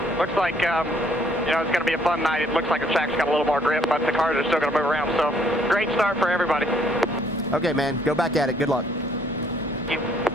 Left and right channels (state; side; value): normal; both; correlation 0.65